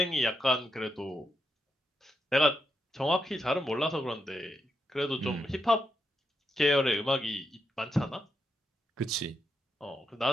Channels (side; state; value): both; normal; correlation 0.83